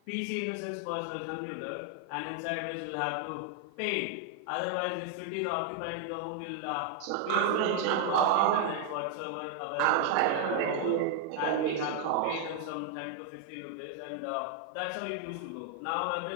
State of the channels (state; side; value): different; both; correlation 0.00